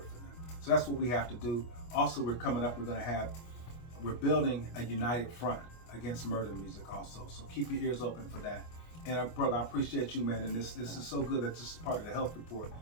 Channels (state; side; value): late; right; 25 ms